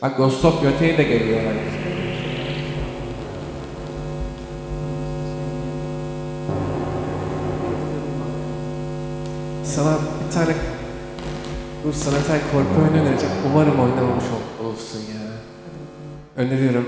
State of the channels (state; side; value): identical; both; correlation 1.00